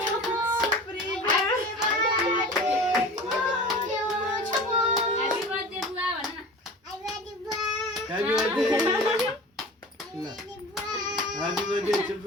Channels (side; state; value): both; normal; correlation 0.37